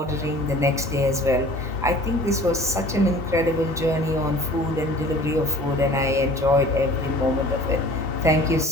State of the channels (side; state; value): both; normal; correlation 0.46